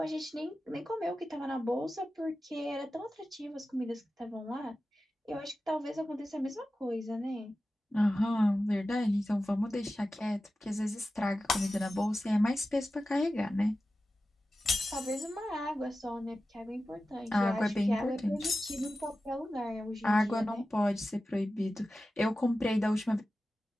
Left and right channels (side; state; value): both; normal; correlation 0.94